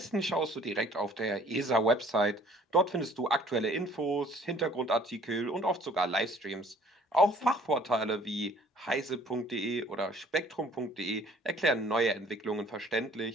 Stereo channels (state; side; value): normal; both; correlation 0.55